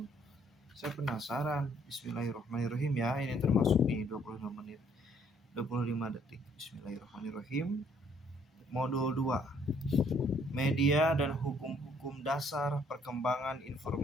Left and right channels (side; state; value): both; normal; correlation 0.64